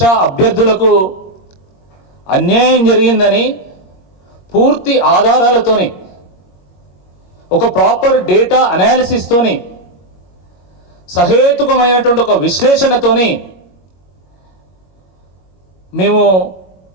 అభ్యర్థులకు అన్యాయం జరిగిందని పూర్తి ఆధారాలతోని ఒక ప్రాపర్ డేటా అనాలిసిస్తోని సహేతుకమైనటువంటి ఒక విశ్లేషణతోని మేము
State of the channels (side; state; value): right; late; 21 ms